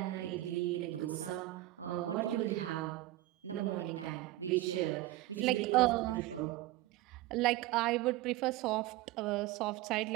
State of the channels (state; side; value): quieter; left; 16.6 dB